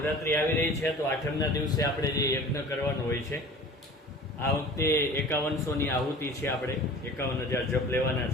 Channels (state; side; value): normal; both; correlation 0.42